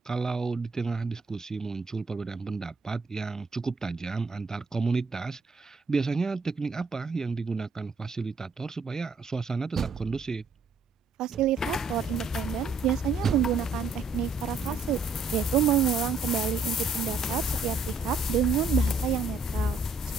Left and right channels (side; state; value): left; quieter; 3.8 dB